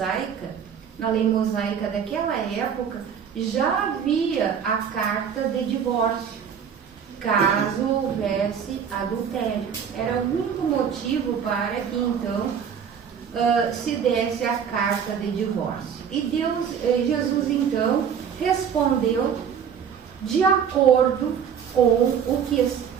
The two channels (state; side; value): quieter; left; 7.6 dB